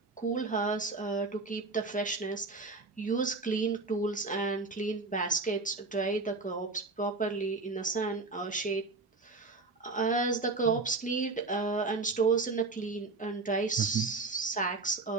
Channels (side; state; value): left; quieter; 3.7 dB